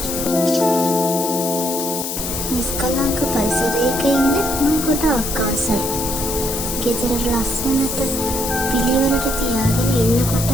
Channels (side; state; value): left; noise; hiss, 4 dB below the sound